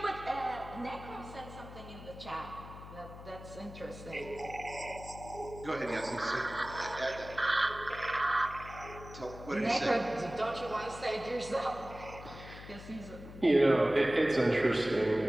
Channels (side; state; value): left; noise; hum, 14 dB below the sound